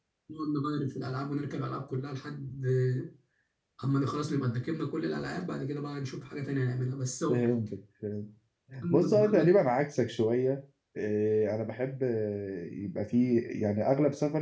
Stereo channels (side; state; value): both; identical; correlation 1.00